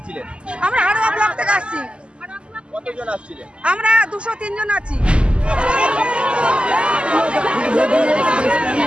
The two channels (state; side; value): late; left; 0.053 ms